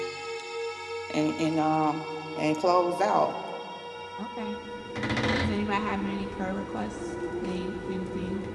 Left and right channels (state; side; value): identical; both; correlation 1.00